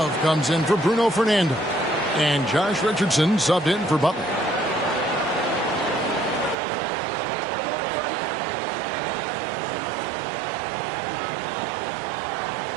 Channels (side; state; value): left; drops out; at 6.6 s